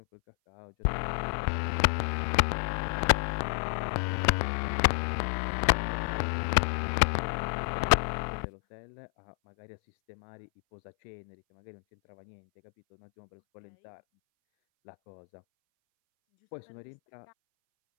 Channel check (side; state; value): right; silent; 58 dB below the other